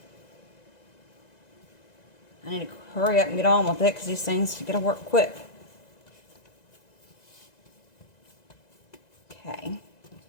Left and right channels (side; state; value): right; late; 1.9 ms